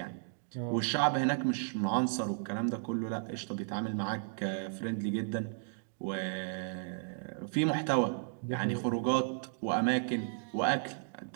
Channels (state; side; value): silent; left; digital silence